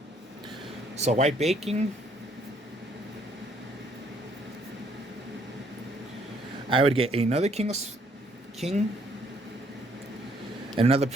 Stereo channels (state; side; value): normal; both; correlation 0.66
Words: So White Baking, I would get another King and another